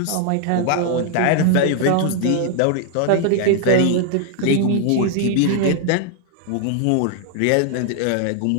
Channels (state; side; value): different; both; correlation 0.00